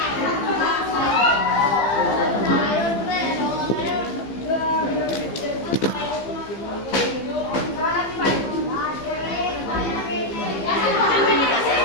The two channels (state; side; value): late; right; 15 ms